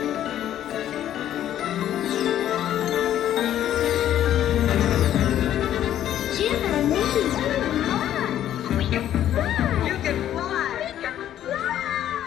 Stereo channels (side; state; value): right; quieter; 11.5 dB